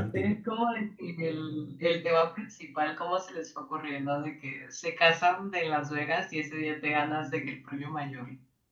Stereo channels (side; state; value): both; identical; correlation 1.00